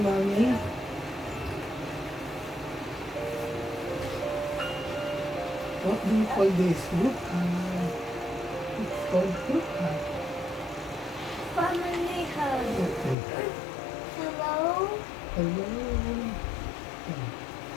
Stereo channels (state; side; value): drops out; right; at 13.2 s